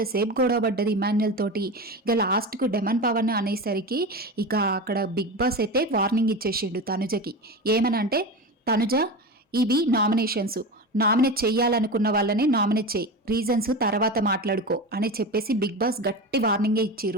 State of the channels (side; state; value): both; normal; correlation 0.25